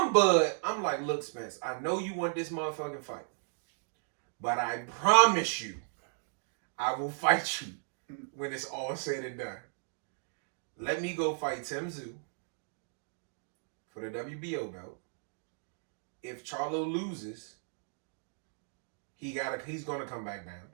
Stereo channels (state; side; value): silent; left; digital silence